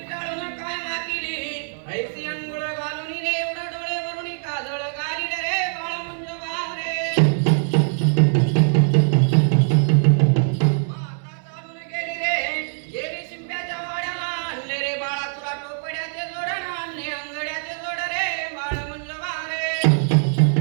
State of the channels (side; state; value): left; silent; 61 dB below the other